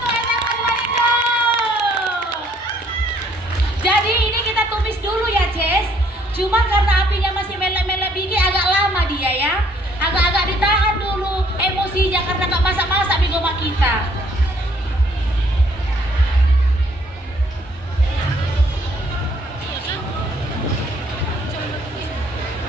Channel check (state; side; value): normal; both; correlation 0.63